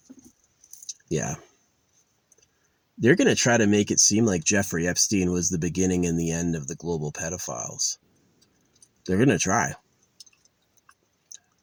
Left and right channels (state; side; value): identical; both; correlation 1.00